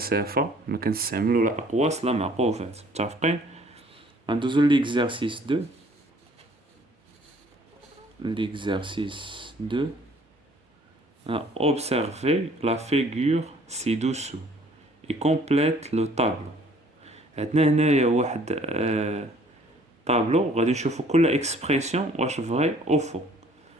ما كنستعملو لا أقواس لا معقوفات. متفقين؟ غندوزو ليكزارسيس 2. L'exercice 2. Observez la figure ci-dessous et complète le tableau. عندنا هنايا واحد طابلو غادي نشوفو كل اكسبريسيون واش فري او فو.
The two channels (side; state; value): both; normal; correlation 0.57